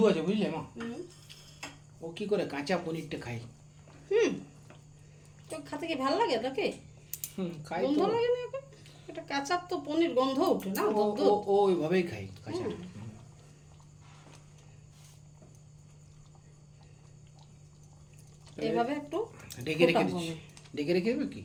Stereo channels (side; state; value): both; identical; correlation 1.00